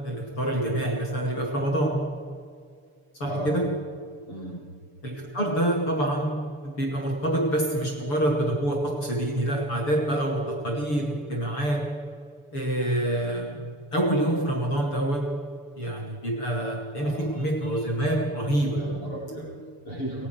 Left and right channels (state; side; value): late; right; 6.9 ms